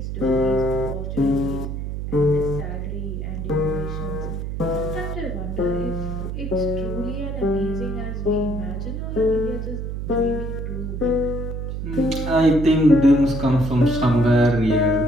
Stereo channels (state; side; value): noise; right; hum, 5 dB below the sound